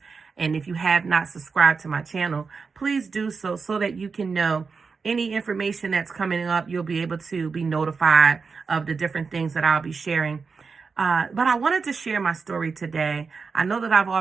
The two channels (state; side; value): quieter; left; 5.0 dB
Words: And if you have not subscribed to my channel, please do so that you can know any information that's coming up. You'll be able to be notified of the different things that I'll be sharing. But I wanted to share my story today. I know that I've